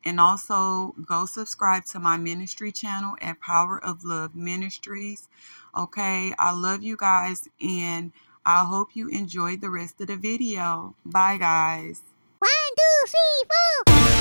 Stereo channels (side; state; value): both; inverted; correlation -1.00